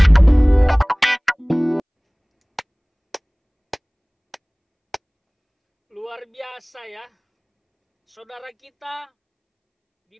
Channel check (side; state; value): both; identical; correlation 1.00